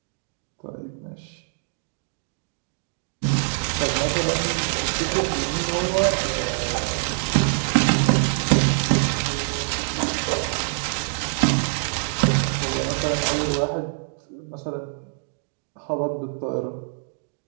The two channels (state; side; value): silent; left; digital silence